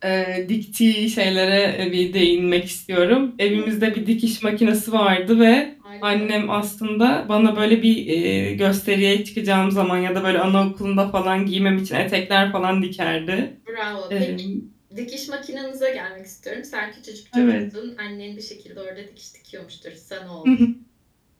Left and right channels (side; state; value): both; identical; correlation 1.00